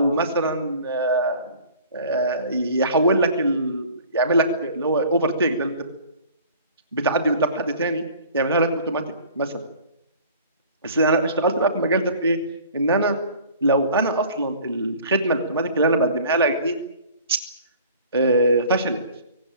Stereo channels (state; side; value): inverted; both; correlation -0.48